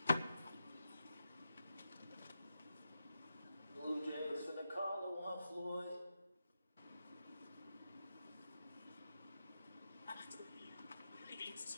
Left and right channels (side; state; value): both; inverted; correlation -0.89